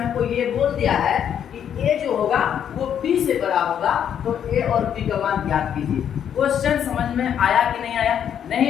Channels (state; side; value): quieter; right; 9.0 dB